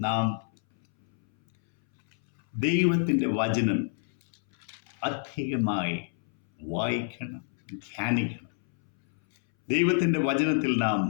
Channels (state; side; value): silent; right; 60 dB below the other